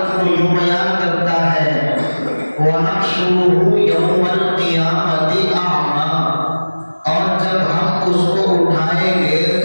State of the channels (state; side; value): inverted; both; correlation -1.00